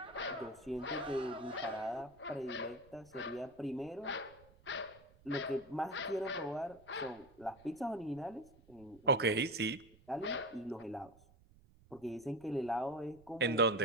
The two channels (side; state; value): right; noise; rumble, 26 dB below the sound